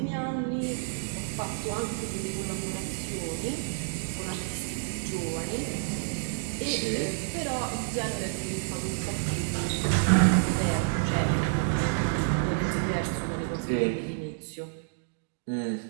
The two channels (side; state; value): left; silent; digital silence